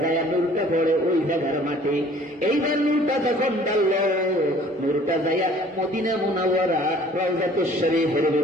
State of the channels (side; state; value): both; normal; correlation 0.53